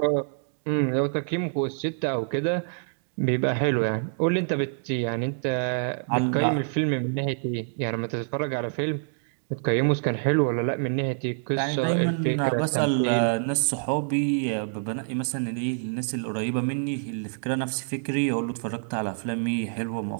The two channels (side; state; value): left; silent; digital silence